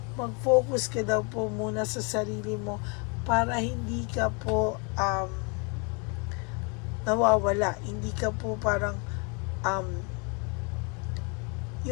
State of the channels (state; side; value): quieter; right; 33.8 dB